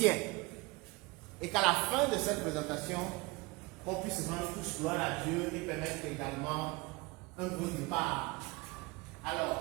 Et qu'à la fin de cette présentation, on puisse rendre tous gloire à Dieu et permettre également un bon départ.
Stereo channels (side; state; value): left; quieter; 24.3 dB